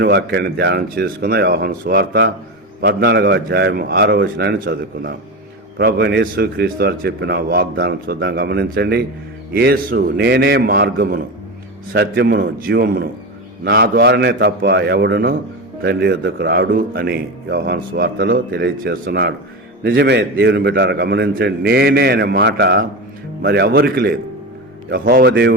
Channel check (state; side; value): normal; both; correlation 0.21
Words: వాక్యాన్ని ధ్యానం చేసుకుందాం. యోహాను సువార్త 14వ అధ్యాయం 6వ వచనాన్ని చదువుకుందాం. ప్రభు యేసు క్రీస్తు వారు చెప్పిన వాగ్దానం చూద్దాం, గమనించండి. యేసు, నేనే మార్గమును, సత్యమును, జీవమును, నా ద్వారానే తప్ప ఎవడును తండ్రి యొద్దకు రాడు అని యోహాను సువార్తలో తెలియజేస్తున్నాడు. నిజమే దేవుని బిడ్డలారా, గమనించండి. నేనే అనే మాట మరి ఎవరికి లేదు. యెహోవా